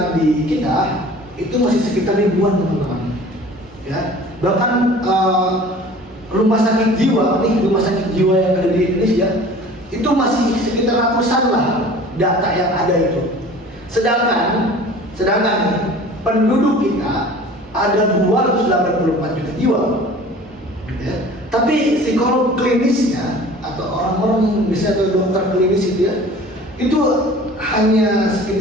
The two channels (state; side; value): normal; both; correlation 0.45